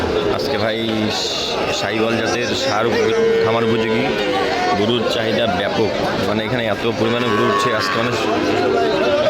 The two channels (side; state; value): both; identical; correlation 1.00